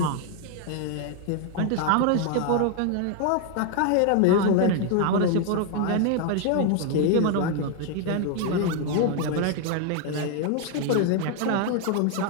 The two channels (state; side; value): different; both; correlation 0.01